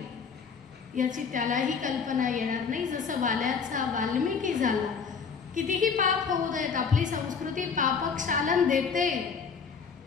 याची त्यालाही कल्पना येणार नाही. जसं वाल्याचा वाल्मिकी झाला. कितीही पाप होऊ देत, आपली संस्कृती पापक्षालन देते,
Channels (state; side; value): quieter; right; 5.9 dB